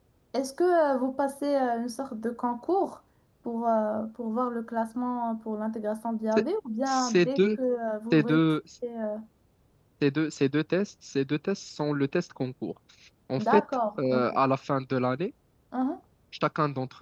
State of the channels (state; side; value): identical; both; correlation 1.00